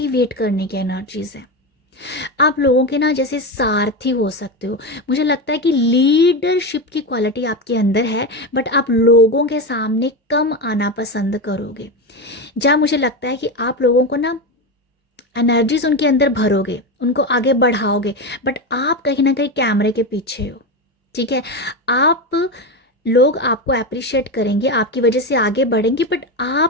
करने की एनर्जीज है। आप लोगों के ना जैसे सारथी हो सकते हो। मुझे लगता है कि लीडरशिप की क्वालिटी आपके अंदर है, बट आप लोगों के सामने कम आना पसंद करोगे। जहाँ मुझे लगता है कि आप लोगों को ना एनर्जीज उनके अंदर भरोगे, उनको आगे बढ़ाओगे, बट आप कहीं ना कहीं कैमरे के पीछे हो। ठीक है, आप लोग आपको अप्रिशिएट करेंगे, आपकी वजह से आगे बढ़ेंगे, बट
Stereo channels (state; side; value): normal; both; correlation 0.17